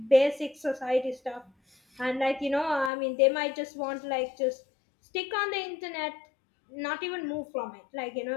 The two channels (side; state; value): right; drops out; at 2.9 s